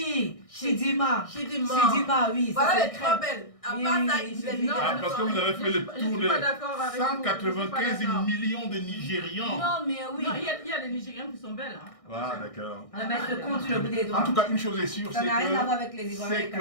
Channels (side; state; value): right; late; 1.6 ms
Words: Chidima. Chidima. Chidima, oui. ça, Voilà c'est les 3 très- belles. À Oui, part oui, ça, oui, les oui. Nigérians Ah, parce que sont- vous avez fait le Je tour suis des pas d'accord avec vous. Je suis pas 195 d'accord. millions de Nigérians. Non, mais oui. Non, il y a des Nigériens qui sont belles. Hein. Ah, d'accord. On va mettre le compte sur le bout des doigts. En tout cas, une chose est sûre, Ça c'est n'a rien à voir que avec les Ivoiriens. c'est